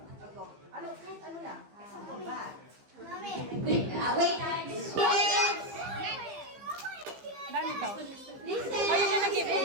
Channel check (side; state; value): left; late; 15 ms